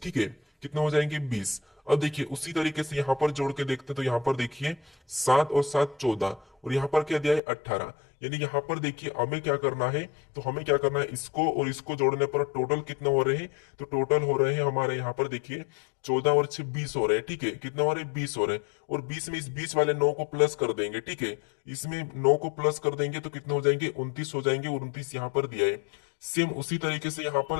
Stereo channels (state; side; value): drops out; right; at 7.4 s